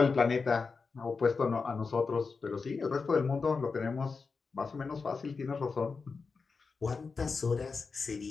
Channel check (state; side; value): quieter; right; 4.7 dB